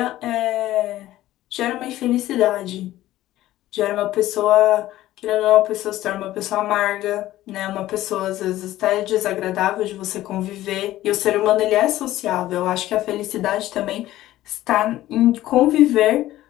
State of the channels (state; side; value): quieter; right; 14.9 dB